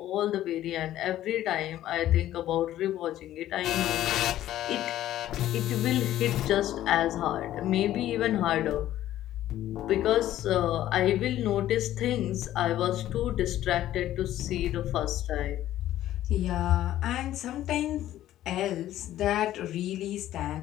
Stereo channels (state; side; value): quieter; right; 13.2 dB